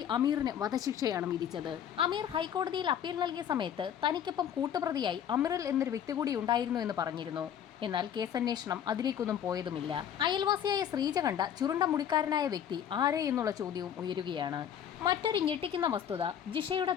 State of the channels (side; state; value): right; quieter; 9.3 dB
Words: അമീറിന് വധശിക്ഷയാണ് വിധിച്ചത്. അമീർ ഹൈക്കോടതിയിൽ അപ്പീൽ നൽകിയ സമയത്ത് തനിക്കൊപ്പം കൂട്ടുപ്രതിയായി അമീറിൽ എന്നൊരു വ്യക്തി കൂടി ഉണ്ടായിരുന്നു എന്ന് പറഞ്ഞിരുന്നു. എന്നാൽ കേസന്വേഷണം അതിലേക്കൊന്നും പോയതുമില്ല. അയൽവാസിയായ ശ്രീജ കണ്ട ചുരുണ്ട മുടിക്കാരനായ വ്യക്തി ആരെ എന്നുള്ള ചോദ്യവും ഉയരുകയാണ്. മറ്റൊരു ഞെട്ടിക്കുന്ന വസ്തുത, ജിഷയുടെ